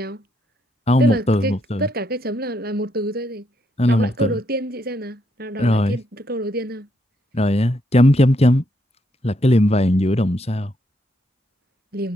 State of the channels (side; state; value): both; normal; correlation 0.76